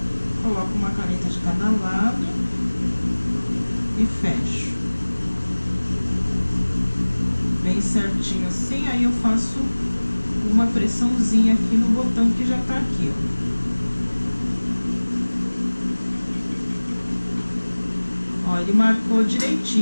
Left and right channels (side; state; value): both; inverted; correlation -1.00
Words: Coloco uma caneta de cada lado e fecho bem certinho assim. Aí eu faço uma pressãozinha aqui no botão que já tá aqui, ó. Ó, ele marcou